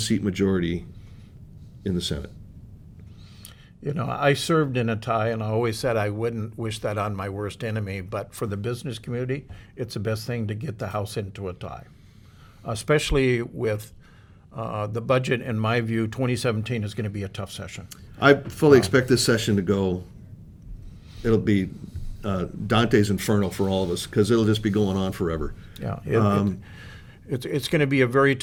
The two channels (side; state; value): both; identical; correlation 1.00